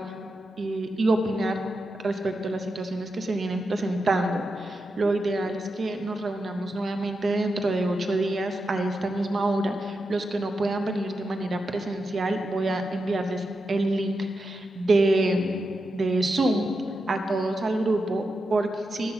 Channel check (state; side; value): normal; both; correlation 0.88